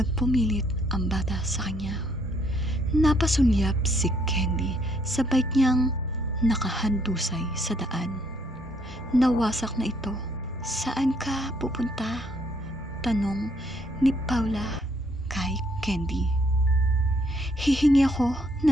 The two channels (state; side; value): normal; both; correlation 0.69